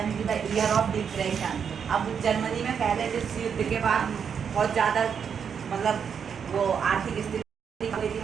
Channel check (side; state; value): left; quieter; 7.1 dB